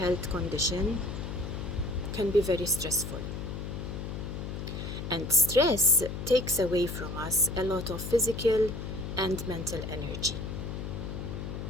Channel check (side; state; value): left; noise; hum, 6 dB below the sound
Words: condition can be very stressful. And stress takes away from us a lot of physical and mental energy.